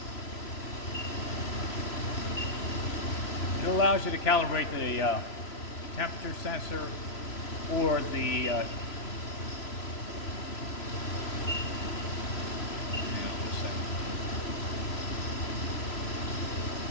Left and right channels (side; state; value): right; late; 3.0 ms